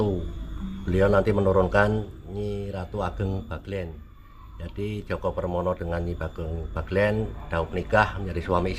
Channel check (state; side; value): identical; both; correlation 1.00